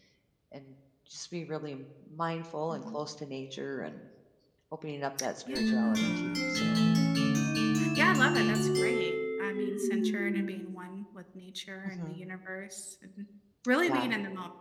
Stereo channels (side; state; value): both; identical; correlation 1.00